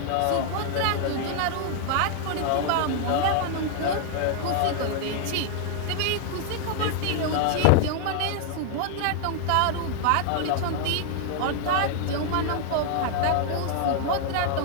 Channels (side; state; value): both; different; correlation -0.01